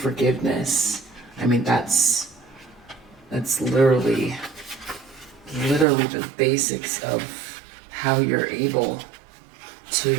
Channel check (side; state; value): left; drops out; at 5.9 s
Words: I mean, that's literally the basics of how you're able